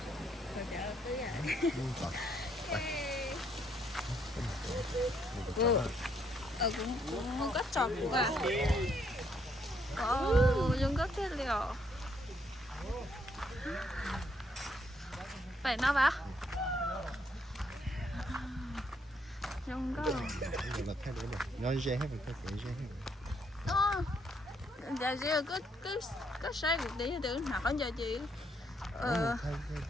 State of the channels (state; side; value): normal; both; correlation 0.72